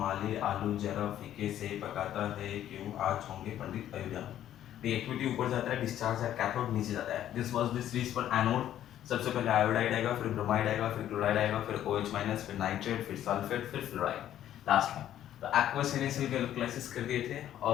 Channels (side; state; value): right; quieter; 11.6 dB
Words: आलू जरा फीके से पकाता है, क्यों आज होंगे पंडित अयोध्या। रिएक्टिविटी ऊपर जाता है, डिस्चार्ज एट कैथोड नीचे जाता है। This was the series for anode. सबसे पहले आयोडाइड आएगा, फिर ब्रोमाइड आएगा, फिर क्लोराइड आएगा, फिर OH माइनस, फिर नाइट्रेट, फिर सल्फेट, फिर फ्लोराइड लास्ट में। तो एक्वस NaCl के इलेक्ट्रोलाइसिस कर दिए थे,